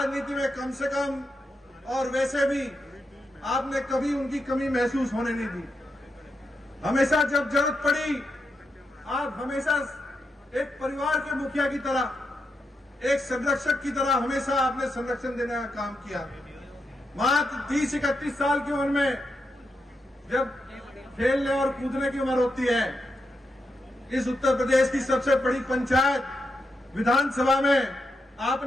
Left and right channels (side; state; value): both; normal; correlation 0.85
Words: में कम से कम और वैसे भी आपने कभी उनकी कमी महसूस होने नहीं दी। हमेशा जब जरूरत पड़ी आप हमेशा एक परिवार के मुखिया की तरह, एक संरक्षक की तरह हमेशा आपने संरक्षण देने का काम किया। मात्र 30-31 साल की उम्र में जब खेलने और कूदने की उम्र होती है, इस उत्तर प्रदेश की सबसे बड़ी पंचायत विधानसभा में